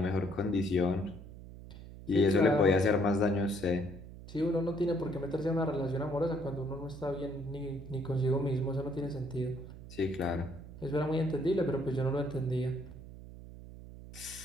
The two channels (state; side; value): noise; right; hum, 15 dB below the sound